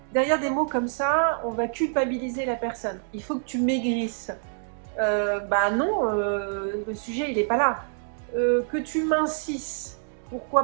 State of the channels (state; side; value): silent; left; digital silence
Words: Derrière des mots comme ça, on va culpabiliser la personne. Il faut que tu maigrisses. Bah non, le sujet il n'est pas là. Que tu mincisses,